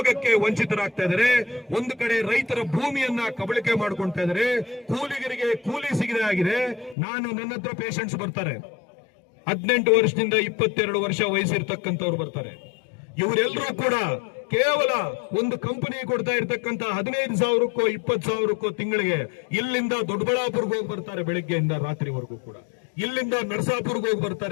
ವಂಚಿತರಾಗ್ತಾ ಇದ್ದಾರೆ. ಒಂದು ಕಡೆ ರೈತರ ಭೂಮಿಯನ್ನ ಕಬಳಿಕೆ ಮಾಡ್ಕೊಳ್ತಾ ಇದ್ದಾರೆ, ಕೂಲಿಗರಿಗೆ ಕೂಲಿ ಸಿಗದೆ ಆಗಿದೆ. ನನ್ನ ಹತ್ರ ಪೇಷಂಟ್ಸ್ ಬರ್ತಾರೆ, 18 ವರ್ಷದಿಂದ 22 ವರ್ಷ ವಯಸ್ಸಿರ್ತಕ್ಕಂಥವ್ರು ಬರ್ತಾರೆ. ಇವರೆಲ್ಲರೂ ಕೂಡ ಕೇವಲ ಒಂದು ಕಂಪನಿ ಕೊಡ್ತಾ ಇರ್ತಕ್ಕಂಥ 15,000ಕ್ಕೋ 20,000ಕ್ಕೋ ತಿಂಗಳಿಗೆ ಇಲ್ಲಿಂದ ದೊಡ್ಡಬಳ್ಳಾಪುರ್ಗೆ ಹೋಗಿ ಬರ್ತಾರೆ ಬೆಳಿಗ್ಗೆಯಿಂದ ರಾತ್ರಿವರೆಗೂ ಕೂಡ. ಇಲ್ಲಿಂದ ನರಸಾಪುರ್ಗೆ ಹೋಗಿ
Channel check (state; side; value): drops out; right; at 7.0 s